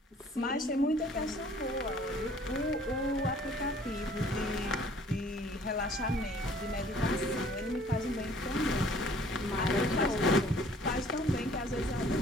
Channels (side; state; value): both; normal; correlation 0.56